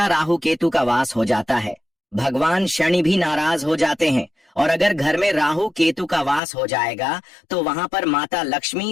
राहु केतु का वास हो जाता है। भगवान शनि भी नाराज हो जाते हैं, और अगर घर में राहु केतु का वास हो जाएगा तो वहां पर माता लक्ष्मी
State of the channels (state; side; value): drops out; right; at 6.4 s